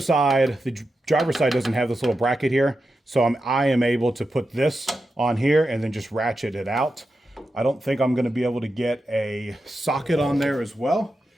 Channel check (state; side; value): normal; both; correlation 0.89